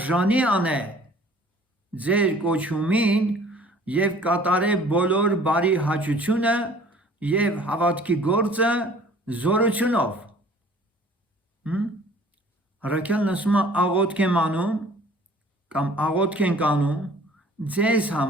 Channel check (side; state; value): both; normal; correlation 0.51